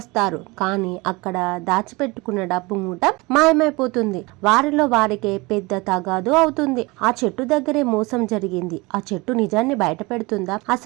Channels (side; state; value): left; quieter; 24.3 dB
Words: కానీ అక్కడ దాచిపెట్టుకున్న డబ్బు మూట మాయమైపోతుంది. వారిలో వారికే పెద్ద తగాదు అవుతుంది. ఆ చెట్టు దగ్గరే మోసం జరిగింది. ఆ చెట్టు నిజాన్ని బయట పెడుతుందా?